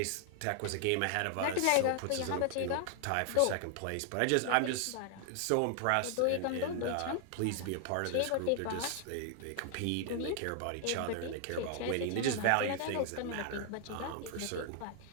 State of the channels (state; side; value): different; both; correlation 0.00